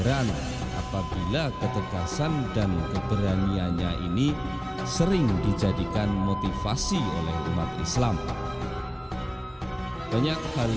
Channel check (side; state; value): both; identical; correlation 1.00